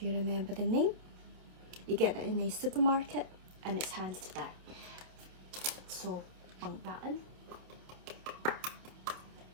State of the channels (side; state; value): left; late; 27 ms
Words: you remember the name, you get it in a supermarket, and it's handed to that. So bunk that in.